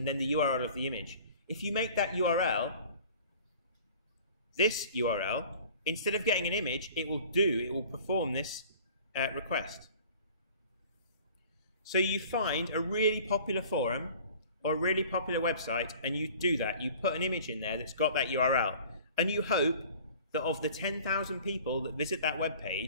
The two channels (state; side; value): inverted; both; correlation -0.47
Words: then the URL of the image. If you make that URL, this URL, instead of getting an image, it will perform this request. So you find a really popular forum or a really popular website, and you do that. You put an image in there that's got that URL, and you hope that of the 10,000 people that visit that web